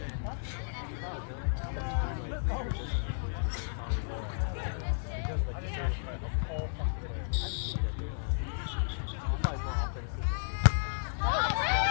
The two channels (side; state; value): right; silent; digital silence